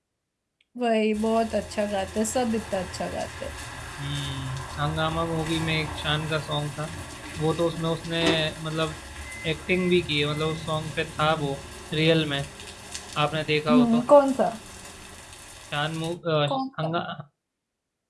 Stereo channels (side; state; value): both; identical; correlation 1.00